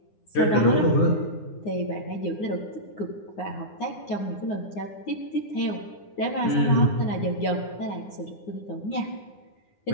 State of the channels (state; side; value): late; right; 9.8 ms